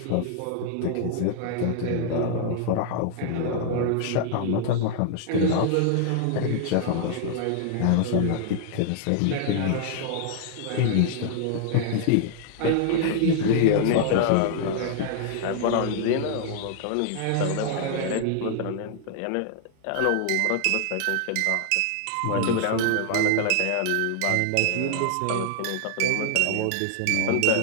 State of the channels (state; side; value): different; both; correlation -0.01